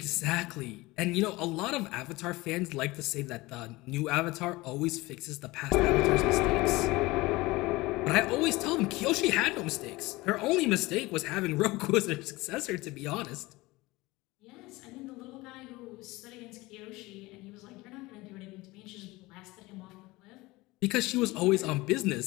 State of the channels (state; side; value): quieter; right; 21.0 dB